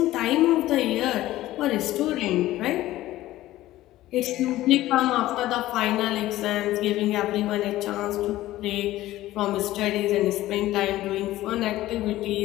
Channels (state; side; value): quieter; right; 15.6 dB